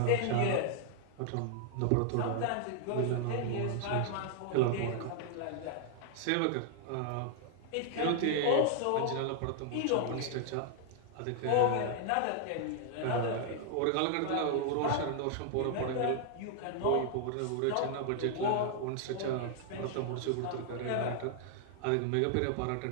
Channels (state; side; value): different; both; correlation 0.00